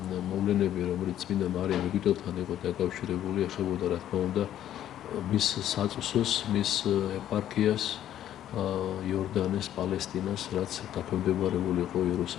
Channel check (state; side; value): quieter; right; 11.5 dB